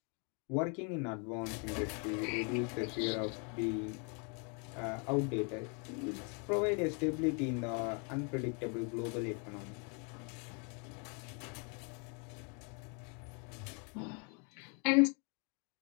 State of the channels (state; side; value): quieter; right; 36.9 dB